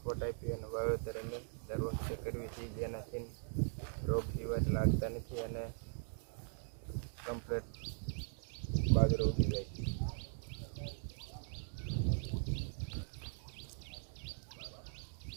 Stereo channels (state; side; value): silent; left; digital silence